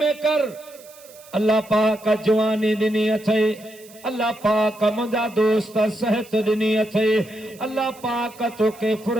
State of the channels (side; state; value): right; noise; hiss, 23 dB below the sound